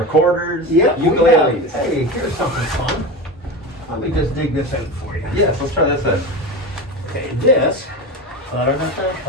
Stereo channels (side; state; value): both; normal; correlation 0.25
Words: Yep. Ukuleles. Hey, here's something fun. Let me just dig this out for you. Yes, let's try this out. Okay, this. I